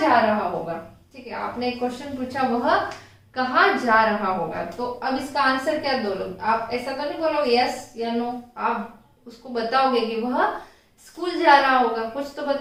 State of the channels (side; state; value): both; identical; correlation 1.00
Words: रहा होगा। ठीक है, आपने एक क्वेश्चन पूछा वह कहाँ जा रहा होगा, तो अब इसका आंसर क्या दो लोग, आप ऐसा तो नहीं बोलोगे यस या नो, आप उसको बताओगे कि वह स्कूल जा रहा होगा, कुछ तो